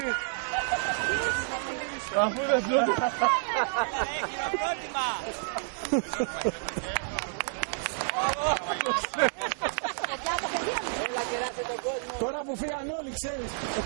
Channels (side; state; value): left; silent; digital silence